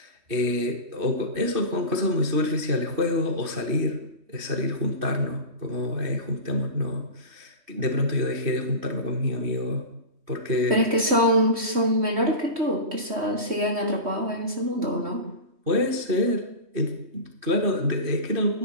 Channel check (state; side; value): late; left; 3.2 ms